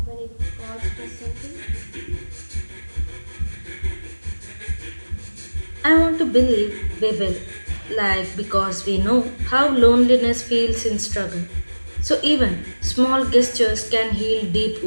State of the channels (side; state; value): both; inverted; correlation -1.00